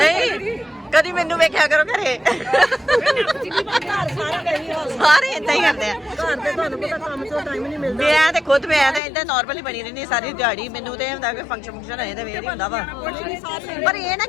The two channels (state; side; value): drops out; right; at 9.0 s